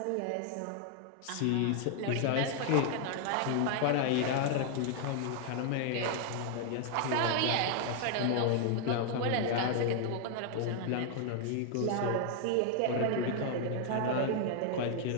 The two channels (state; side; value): different; both; correlation 0.00